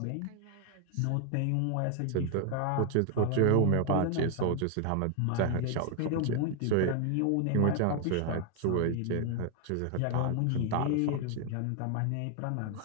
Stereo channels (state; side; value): different; both; correlation 0.00